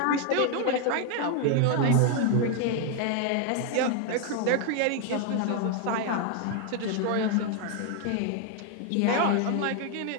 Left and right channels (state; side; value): different; both; correlation 0.00